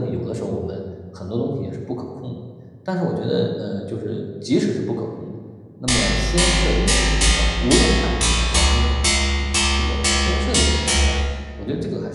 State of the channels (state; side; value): identical; both; correlation 1.00